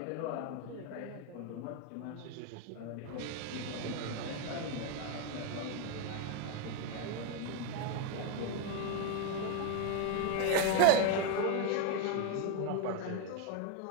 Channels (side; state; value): both; different; correlation 0.01